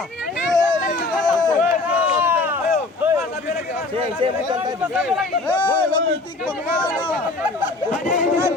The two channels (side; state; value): right; quieter; 3.3 dB